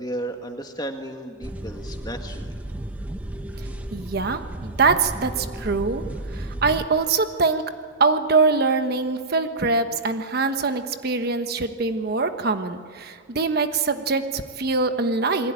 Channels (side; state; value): left; quieter; 3.4 dB